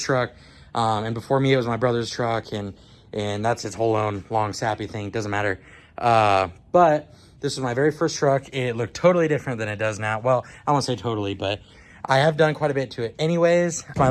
truck. And before me, it was my brother's truck, and that's its whole own long sappy thing. Doesn't matter. But this was my very first truck. It looked totally different than it does now. Well, I won't say totally, but I have done quite a bit to it. Anyways, it's my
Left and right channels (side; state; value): both; identical; correlation 1.00